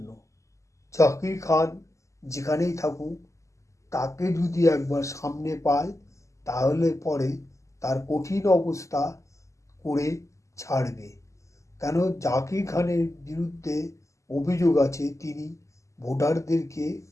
জাকির খান যেখানেই থাকুক, তাকে যদি একবার সামনে পায় তাহলে পরে তার কঠিন অবস্থা করে ছাড়বে। কেন, জাকির খানের বিরুদ্ধে অভিযোগ আছে তিনি ভোটারদেরকে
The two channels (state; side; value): late; right; 0.15 ms